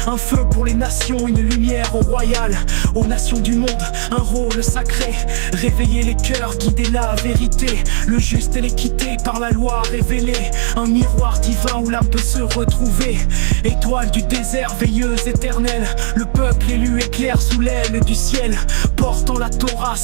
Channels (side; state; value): left; silent; digital silence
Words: un feu pour les nations, une lumière royale. Aux nations du monde, un rôle sacré, réveiller les cœurs, guider la vérité, le juste et l'équité par la loi révélée, un miroir divin où l'âme peut se retrouver. Étoile du désert, veilleuse éternelle, le peuple élu éclaire sous l'aile du ciel, portant la Torah,